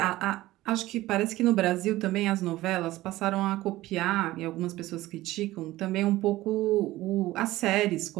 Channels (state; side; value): quieter; left; 16.9 dB